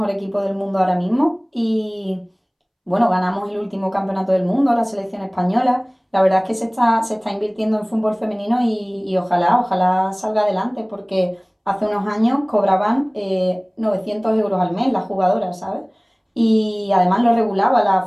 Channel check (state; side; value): identical; both; correlation 1.00